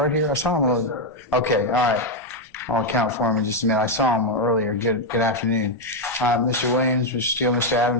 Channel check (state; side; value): normal; both; correlation 0.02